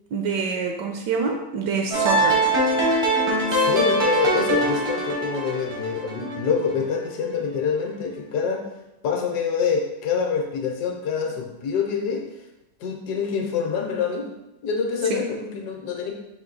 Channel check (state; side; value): normal; both; correlation -0.04